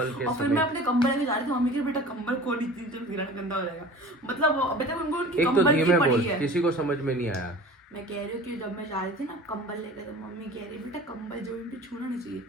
के और फिर समय मैं अपने कंबल लेके जा रही थी, मम्मी के बेटा कंबल खोल इतनी तो गिरना गंदा हो जाएगा। मतलब अभी तक उनको उनकी एक तो कंबल की धीमे पड़ी बोल, है। किसी को समझ में नहीं आया। मैं कह रही हूँ कि जब मैं जा रही थी ना कंबल लेकर, तो मम्मी कह रही बेटा कंबल जो भी छूना नहीं चाहिए।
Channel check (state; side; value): normal; both; correlation 0.40